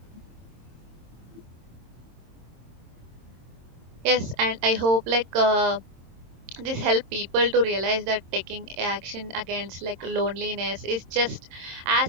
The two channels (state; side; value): late; left; 24 ms